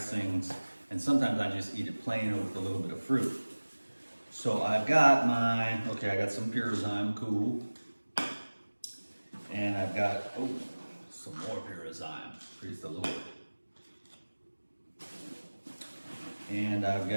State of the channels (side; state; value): both; inverted; correlation -1.00